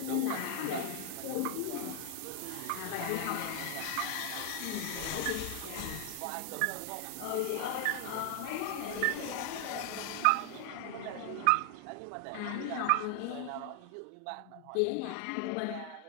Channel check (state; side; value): different; both; correlation 0.00